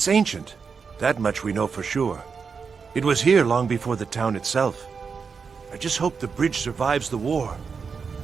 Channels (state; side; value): quieter; left; 5.6 dB